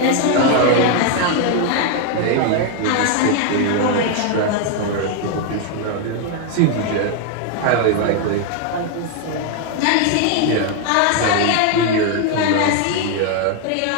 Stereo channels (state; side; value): different; both; correlation 0.01